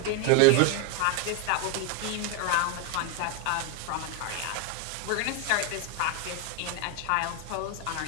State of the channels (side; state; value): both; different; correlation 0.02